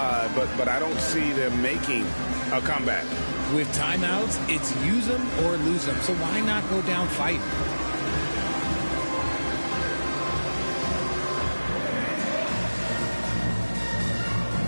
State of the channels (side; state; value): both; inverted; correlation -1.00